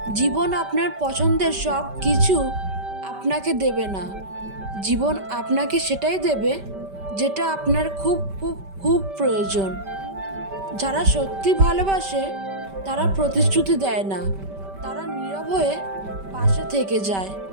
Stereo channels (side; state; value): left; late; 5.1 ms